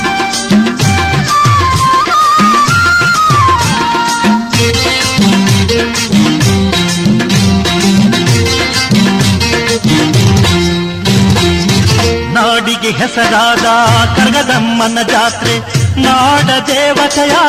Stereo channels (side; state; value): both; identical; correlation 1.00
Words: ನಾಡಿಗೆ ಹೆಸರಾದ ಕರಗದಮ್ಮನ ಜಾತ್ರೆ, ನಾಡ ದೇವತೆಯ